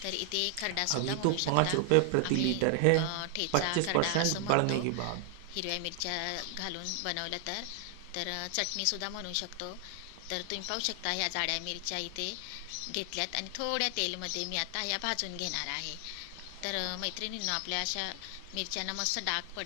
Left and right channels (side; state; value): both; different; correlation 0.00